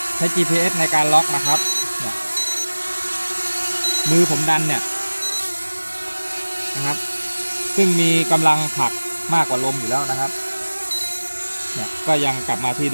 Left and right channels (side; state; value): both; inverted; correlation -1.00